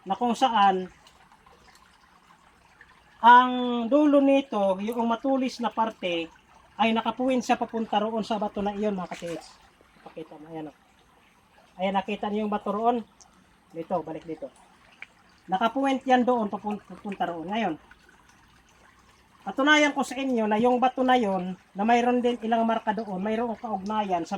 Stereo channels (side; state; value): both; identical; correlation 1.00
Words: Na kung saan ang dulo nito, yung matulis na parte ay nakapuwin sa papunta roon sa bato na iyon mga ka-TH. Pakita mo, ayan o. Ayan, nakita niyo yung bato roon. Dito, balik dito. Nakapuwint yan doon, papunta roon. Ngayon, patunayan ko sa inyo na yung bato na yon na mayroon din ilang marka doon, mayroong kaugnayan